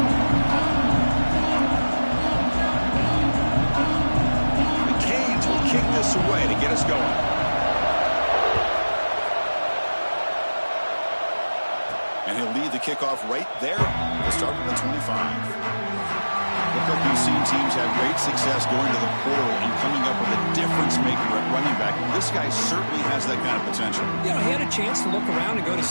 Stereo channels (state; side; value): inverted; both; correlation -1.00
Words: The Canes will kick this away to get us going. And he'll lead the kickoff right there to start with the 25. Look like we've seen teams have great success going to the portal and coming up with a difference maker at running back. This guy certainly has that kind of potential. You know, he had a chance to look around and go to